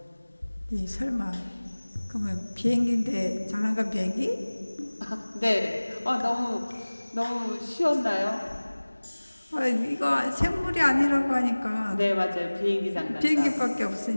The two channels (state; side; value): inverted; both; correlation -1.00